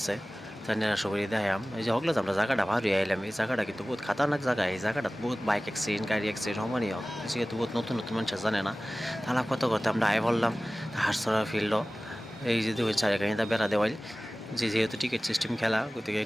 তাই নিরা সবই দেখাম। এই যে হকলে আমরা জায়গাটা ভালো আইলাম, এই জায়গাটা কিন্তু বহুত খাতারনাক জায়গা। এই জায়গাটা বহুত বাইক অ্যাক্সিডেন্ট, গাড়ি অ্যাক্সিডেন্ট সমানই হোক, যেহেতু বহুত নতুন নতুন মানুষ জানে না। তাহলে কত করতে আমরা আয় বললাম হারসরা ফিল্ড। এই যে দুই চারিখানিটা বেড়া দেওয়াই, যেহেতু টিকিট সিস্টেম খেলা, গতিকে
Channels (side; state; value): both; normal; correlation 0.97